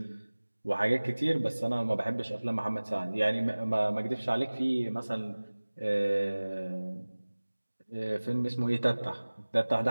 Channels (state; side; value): inverted; both; correlation -1.00